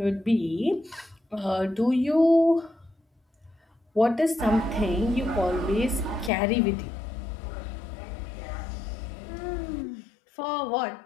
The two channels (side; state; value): right; drops out; at 6.3 s